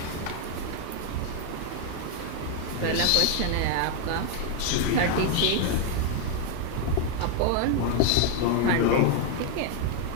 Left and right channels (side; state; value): both; different; correlation 0.00